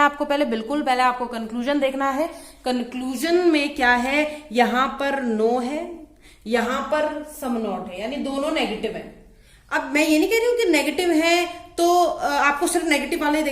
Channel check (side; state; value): both; identical; correlation 1.00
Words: आपको पहले, बिल्कुल पहले आपको कंक्लूजन देखना है। कंक्लूजन में क्या है, यहां पर नो है, यहां पर सम नॉट है, यानी दोनों नेगेटिव है। अब मैं ये नहीं कह रही हूं कि नेगेटिव है तो आपको सिर्फ नेगेटिव वाले ही